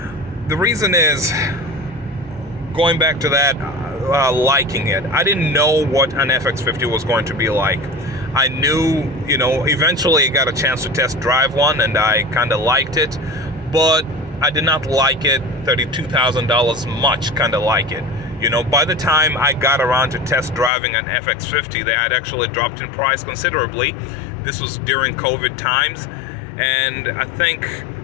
The reason is, going back to that, liking it. I didn't know what an FX50 was going to be like. I knew, eventually I got a chance to test drive one and I kind of liked it, but I did not like it. $32,000 much kind of like it. By the time I got around to test driving an FX50, they had actually dropped in price considerably. This was during COVID times, and I think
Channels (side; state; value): right; drops out; at 20.7 s